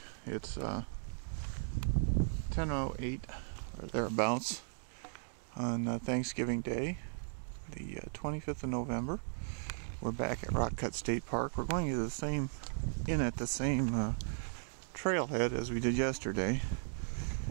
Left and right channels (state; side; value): silent; left; digital silence